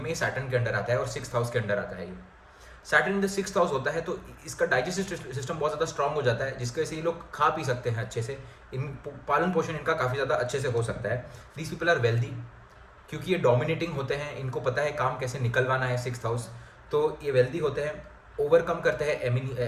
ये सैटर्न के अंडर आता है और 6th हाउस के अंडर आता है। ये Saturn in the 6th house होता है, तो इसका डाइजेस्टिव सिस्टम बहुत ज़्यादा स्ट्रांग हो जाता है, जिसकी वजह से ये लोग खा पी सकते हैं अच्छे से, इन पालन पोषण इनका काफ़ी ज़्यादा अच्छे से हो सकता है। दीज पीपल आर वेल्दी, क्योंकि ये डोमिनेटिंग होते हैं, इनको पता है काम कैसे निकलवाना है 6th हाउस, तो ये वेल्दी होते हैं। ओवरकम करते हैं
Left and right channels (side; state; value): both; identical; correlation 1.00